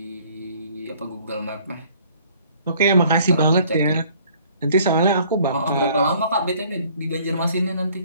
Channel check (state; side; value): inverted; both; correlation -0.57